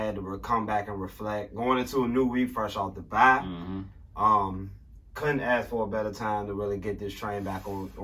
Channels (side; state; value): both; identical; correlation 1.00